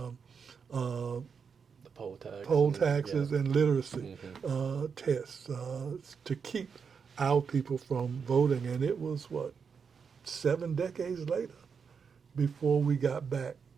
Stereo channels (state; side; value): quieter; left; 6.1 dB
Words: poll taxes and literacy tests to keep our people from voting. And it was, 7 decades later before we got back